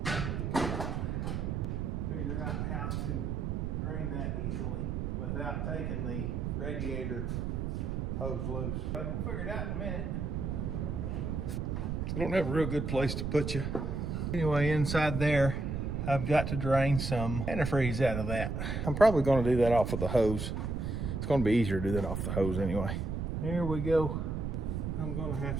figure out how to drain that easily without taking the radiator hose loose. But we'll figure it out in a minute. I don't have a real good place to put you. Anyway, inside there, I've got to drain some antifreeze out of that. I'm probably gonna do that off with the hose. It's gonna be easier to do that off the hose anyway. Here we go. I'm gonna have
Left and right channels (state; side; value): noise; right; rumble, 2 dB below the sound